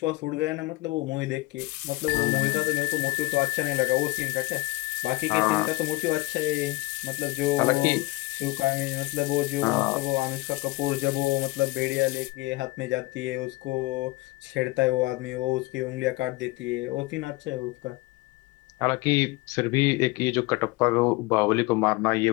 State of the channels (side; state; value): right; quieter; 21.4 dB